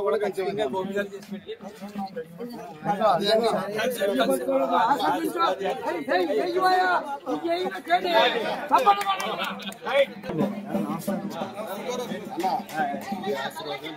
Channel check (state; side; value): identical; both; correlation 1.00